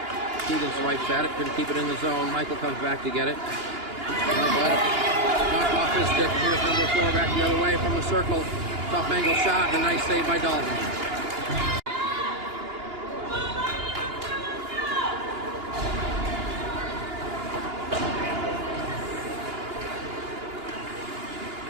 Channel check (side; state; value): left; late; 2.9 ms